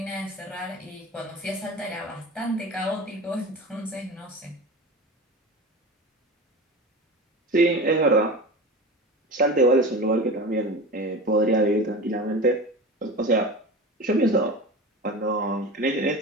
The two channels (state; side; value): normal; both; correlation 0.30